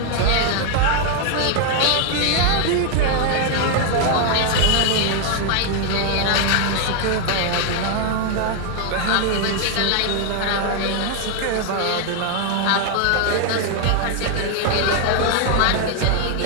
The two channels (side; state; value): both; different; correlation 0.00